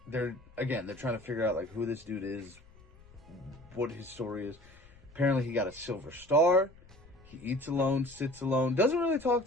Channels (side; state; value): left; noise; rumble, 24 dB below the sound